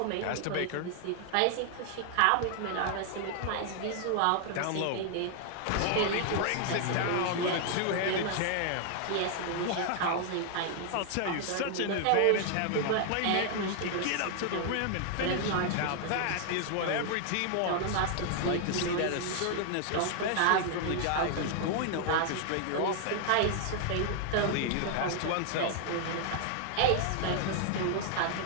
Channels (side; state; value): both; different; correlation 0.00